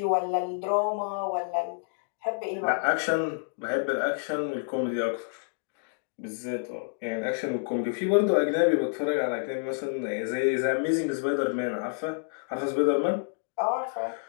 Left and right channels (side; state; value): right; silent; digital silence